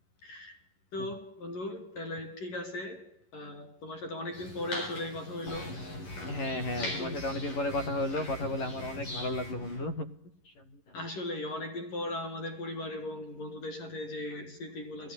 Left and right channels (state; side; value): late; right; 11 ms